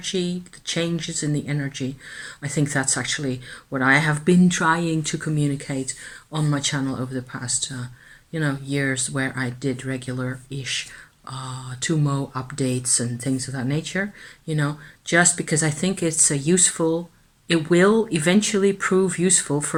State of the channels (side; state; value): both; identical; correlation 1.00